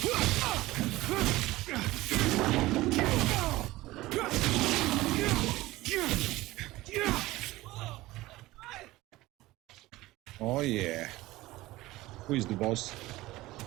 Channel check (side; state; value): left; quieter; 18.3 dB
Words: Oh yeah. Who is the boss?